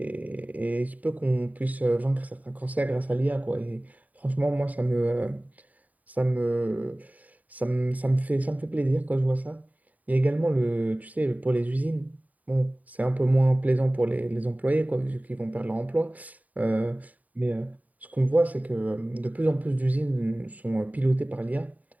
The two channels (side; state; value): left; late; 0.073 ms